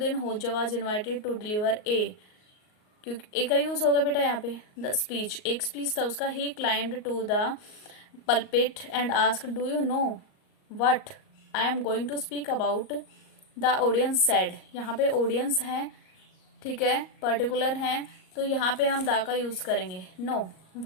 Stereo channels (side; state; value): right; late; 38 ms